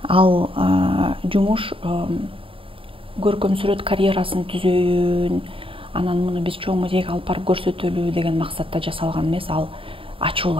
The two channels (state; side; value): late; left; 0.26 ms